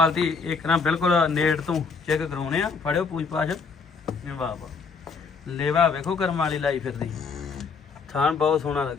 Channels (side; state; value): right; quieter; 5.0 dB